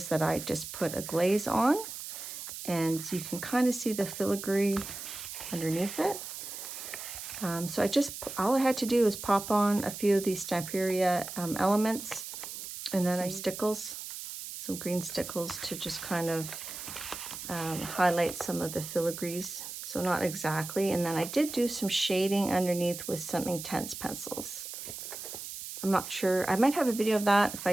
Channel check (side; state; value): right; noise; hiss, 9 dB below the sound